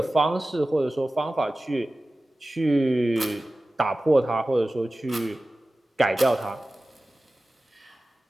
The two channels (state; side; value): normal; both; correlation 0.96